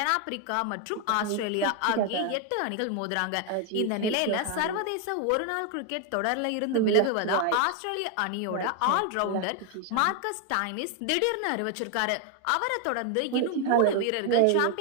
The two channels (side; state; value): both; different; correlation 0.01